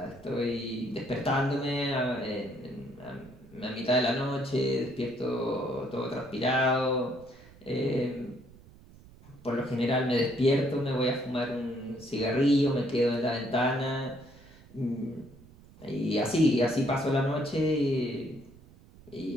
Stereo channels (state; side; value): noise; right; rumble, 23 dB below the sound